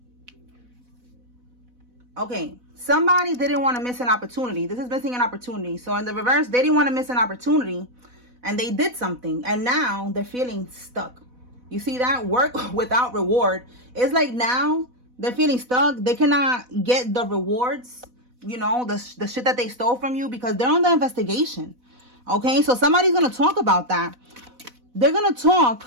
Okay, somebody didn't want to miss an opportunity. This is missing an opportunity. So in the reverse, they didn't want to miss an opportunity and they did something and now they're feeling stuck. You see that? Work without reward. It's like now they're feeling stuck. They cannot get the rewards you know, the shit that they stole from you, because they're on the investigation. Okay, so somebody's going to talk about that. They're going to talk.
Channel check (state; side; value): late; left; 4.0 ms